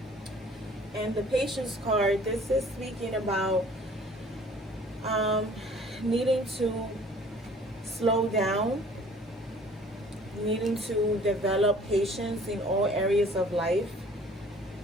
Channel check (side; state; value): both; normal; correlation 0.52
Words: And the patience card, this is speaking about needing to slow down, needing to develop patience in all areas of life.